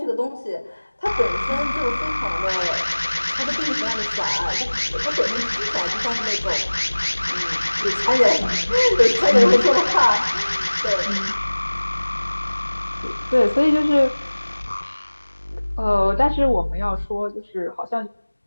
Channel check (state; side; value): inverted; both; correlation -1.00